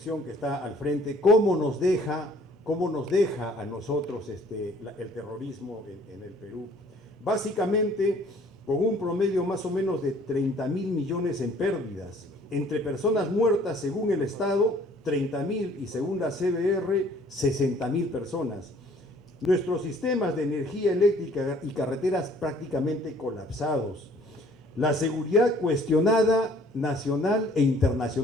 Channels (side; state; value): both; normal; correlation 0.57